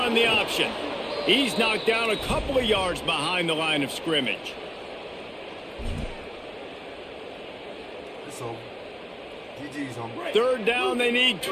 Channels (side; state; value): both; identical; correlation 1.00